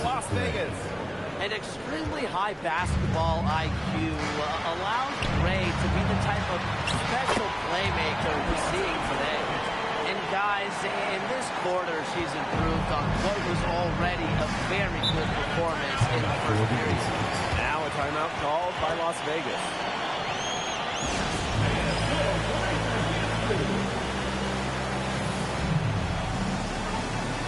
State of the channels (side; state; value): both; identical; correlation 1.00